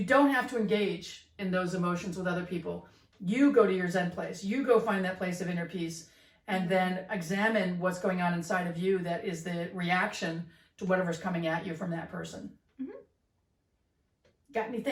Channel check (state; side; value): identical; both; correlation 1.00